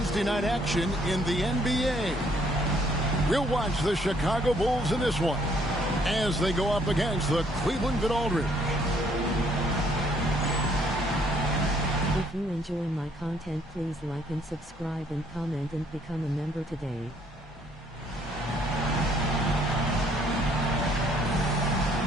night action in the NBA. We'll watch the Chicago Bulls in this one as they go up against the Cleveland Good Aldridge. If you enjoy my content, please like and subscribe and comment and become a member today.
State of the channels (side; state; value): both; normal; correlation 0.65